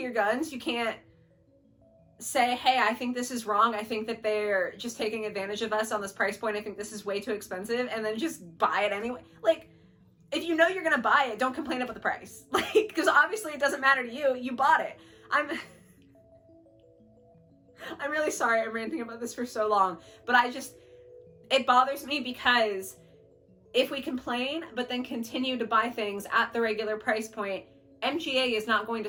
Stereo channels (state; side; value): identical; both; correlation 1.00